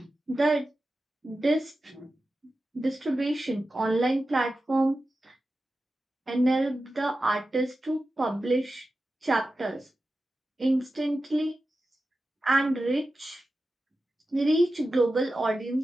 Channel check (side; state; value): both; normal; correlation 0.93